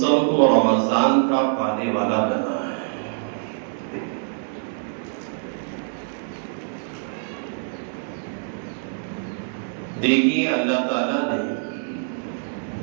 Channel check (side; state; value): left; silent; 62 dB below the other